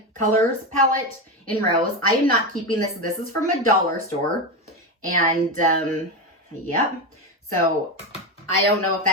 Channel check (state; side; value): normal; both; correlation 0.15